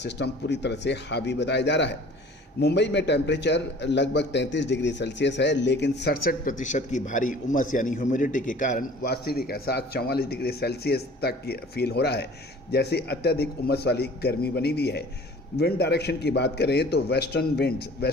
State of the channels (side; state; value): both; normal; correlation 0.48